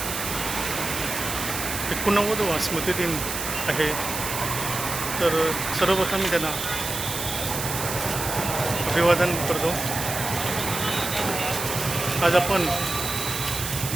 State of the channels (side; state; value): right; noise; hiss, 5 dB below the sound